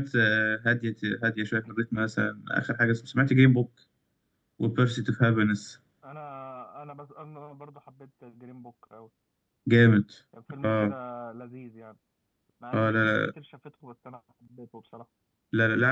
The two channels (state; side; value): identical; both; correlation 1.00